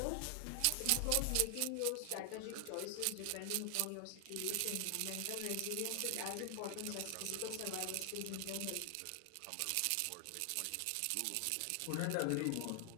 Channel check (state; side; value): different; both; correlation 0.00